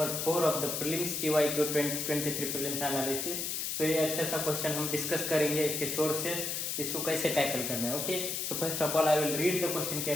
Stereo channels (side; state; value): left; noise; hiss, 2 dB below the sound